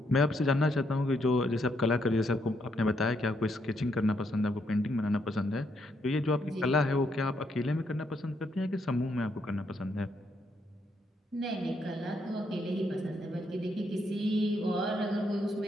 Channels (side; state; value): both; normal; correlation 0.76